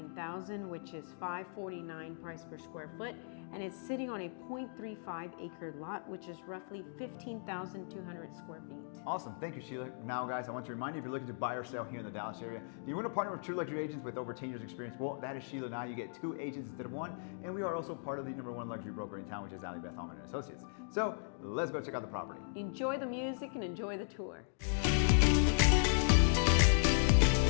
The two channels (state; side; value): silent; right; digital silence